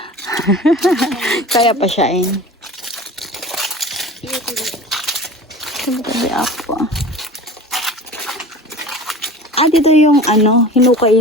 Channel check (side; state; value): both; normal; correlation 0.37